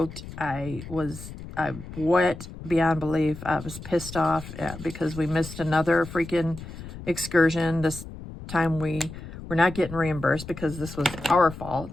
I wet beyond belief. I was pissed off because we missed another freaking excursion. This time we're not getting reimbursed because this was our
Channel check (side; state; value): left; noise; rumble, 12 dB below the sound